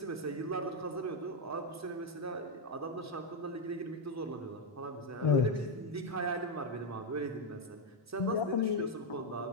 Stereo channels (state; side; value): normal; both; correlation 0.03